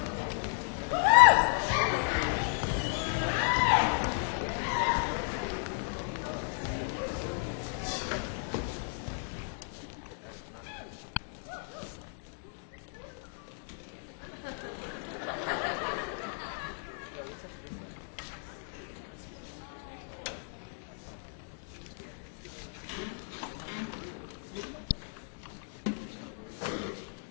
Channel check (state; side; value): silent; right; 55 dB below the other